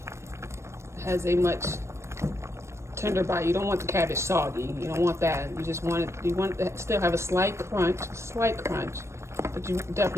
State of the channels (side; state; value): left; late; 0.13 ms